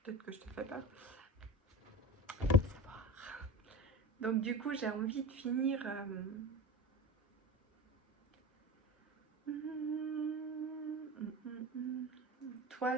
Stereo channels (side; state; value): both; normal; correlation 0.31